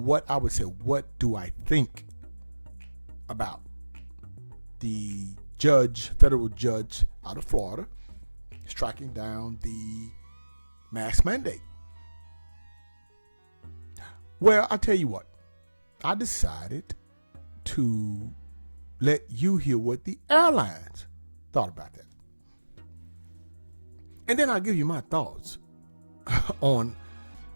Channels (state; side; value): inverted; both; correlation -1.00